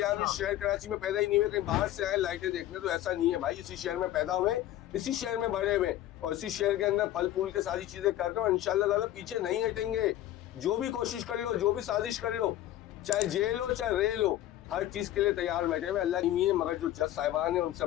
हम इस शहर कराची में पैदा ही नहीं हुए, कहीं बाहर से आए लाइटें देखने। तो ऐसा नहीं है भाई, इसी शहर में पैदा हुए, इसी शहर में बड़े हुए और इसी शहर के अंदर फल फूल के सारी चीजें कर रहे हो। इंशाल्लाह ताला पीछे नहीं हटेंगे। जो भी कोशिश कर लो, जो भी साजिश कर लो, चाहे जेल हो चाहे रेल हो, हर चीज के लिए तैयार बैठे हुए अल्लाह की। मगर जो जज साहिबान है उनसे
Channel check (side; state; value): right; quieter; 13.5 dB